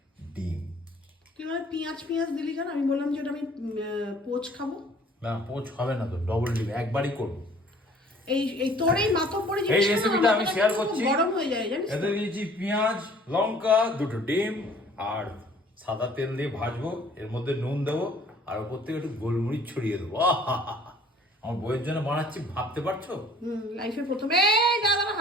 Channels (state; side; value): normal; both; correlation 0.54